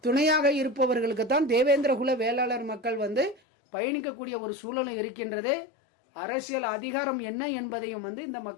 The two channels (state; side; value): drops out; right; at 3.4 s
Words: துணையாக இருப்பவர்களுக்கு தான் தேவேந்திரகுல வேளாளர் மக்கள் பயணிக்கக்கூடிய ஒரு சூழலும் இருக்கின்றது. அரசியல் அதிகாரம் என்ன என்பதையும் இந்த